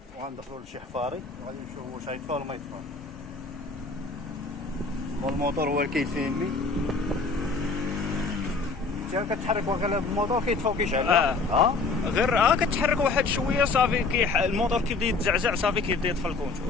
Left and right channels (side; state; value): right; quieter; 4.0 dB